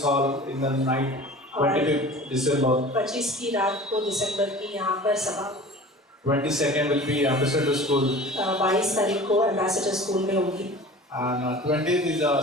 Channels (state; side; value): normal; both; correlation 0.40